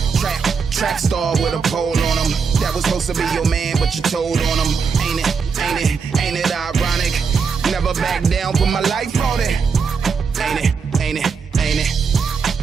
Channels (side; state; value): left; quieter; 5.6 dB